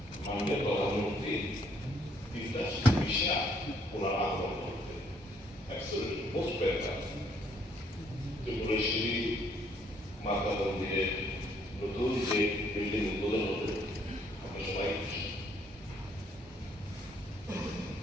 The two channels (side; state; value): both; normal; correlation 0.67